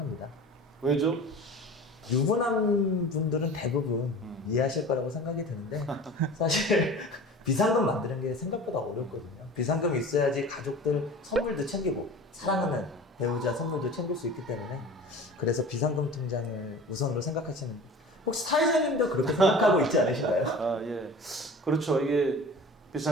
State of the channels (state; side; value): normal; both; correlation 0.39